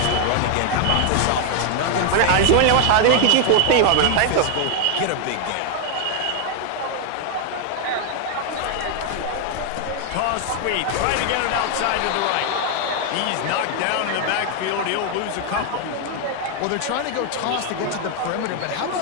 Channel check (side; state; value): both; different; correlation 0.00